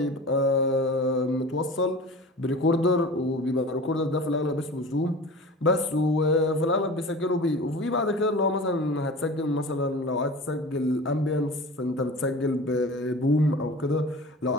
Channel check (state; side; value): normal; both; correlation 0.37